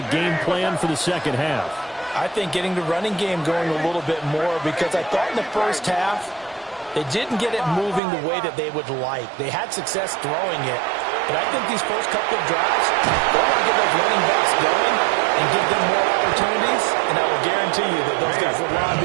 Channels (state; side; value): drops out; left; at 8.0 s